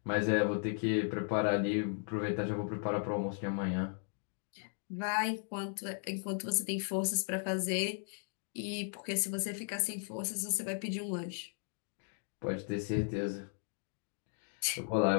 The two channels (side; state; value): right; silent; 54 dB below the other